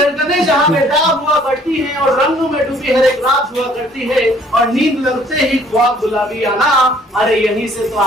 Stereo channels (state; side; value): normal; both; correlation 0.59